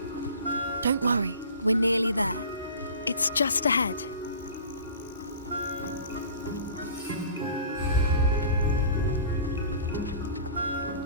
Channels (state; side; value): inverted; both; correlation -0.42